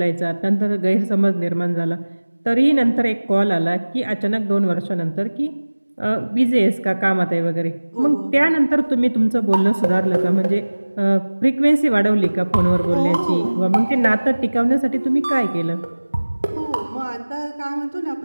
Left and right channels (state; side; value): inverted; both; correlation -1.00